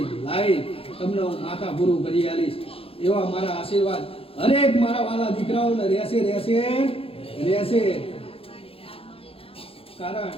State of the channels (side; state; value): right; late; 0.27 ms